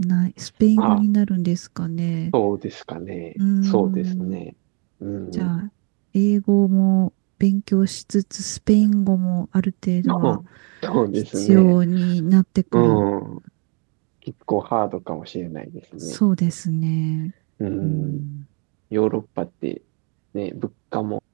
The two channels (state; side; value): quieter; left; 35.5 dB